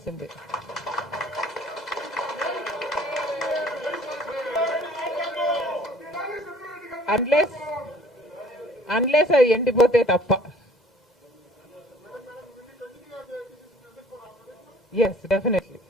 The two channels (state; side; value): normal; both; correlation 0.53